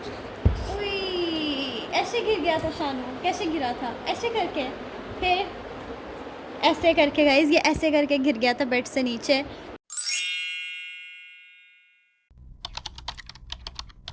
ऐसे गिर गया था शानू। कैसे गिरा था? ऐसे करके, फिर ऐसे करके गाइस, ये ऐसे करके गिर गया था बेड से नीचे।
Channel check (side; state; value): both; identical; correlation 1.00